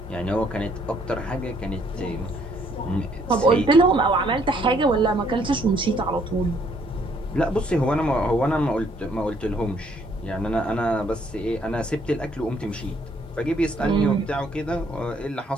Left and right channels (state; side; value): normal; both; correlation 0.66